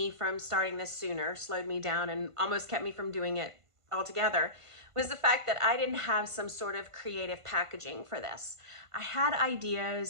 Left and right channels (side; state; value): left; late; 1.5 ms